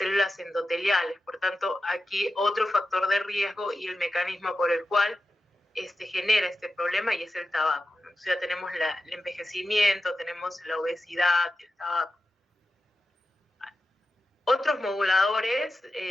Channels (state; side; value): normal; both; correlation 0.91